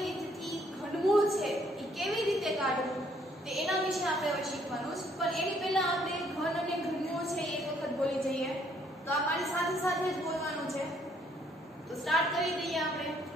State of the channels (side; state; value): both; normal; correlation 0.66